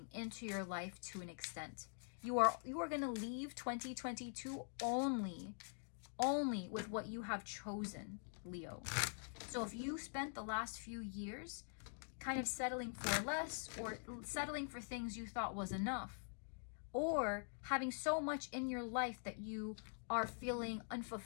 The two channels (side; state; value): right; silent; digital silence